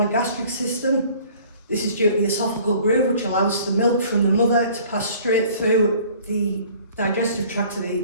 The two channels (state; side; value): inverted; both; correlation -0.51